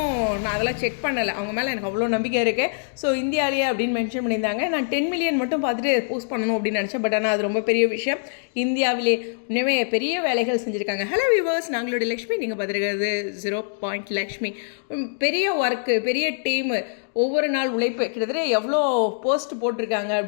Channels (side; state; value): right; silent; digital silence